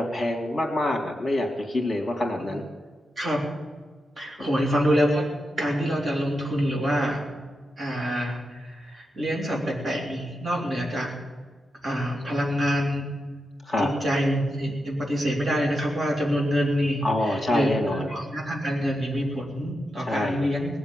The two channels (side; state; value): both; normal; correlation 0.87